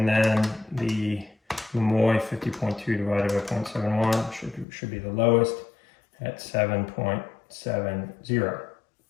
then the Momoi 50.2 divided by 0.71 should be the lowest at 7.70.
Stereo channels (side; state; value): right; drops out; at 4.7 s